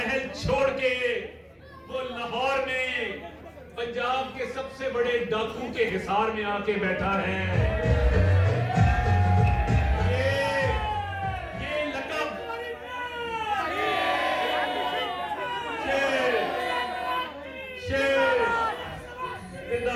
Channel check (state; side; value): identical; both; correlation 1.00